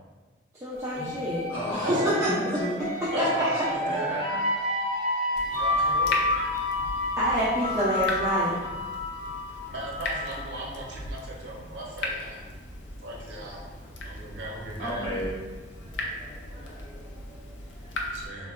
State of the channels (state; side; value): normal; both; correlation 0.08